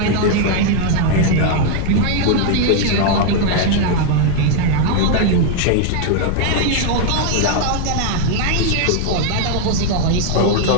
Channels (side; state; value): both; different; correlation 0.00